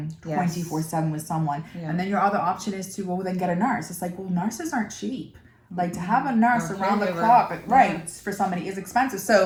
24/7 with someone. And then your other option is to, well, then get a nurse. It's like, well, nurses aren't cheap. Like to have a nurse around the clock, right, for somebody is expensive.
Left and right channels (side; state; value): both; identical; correlation 1.00